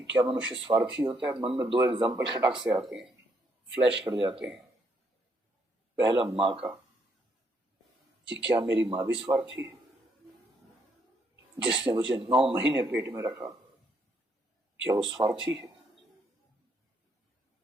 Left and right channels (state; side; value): normal; both; correlation 0.73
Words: क्या मनुष्य स्वार्थी होता है, मन में दो एग्जाम्पल खटाक से आते हैं, फ्लैश कर जाते हैं। पहला माँ का, कि क्या मेरी माँ भी स्वार्थी है, जिसने मुझे 9 महीने पेट में रखा, क्या वो स्वार्थी है?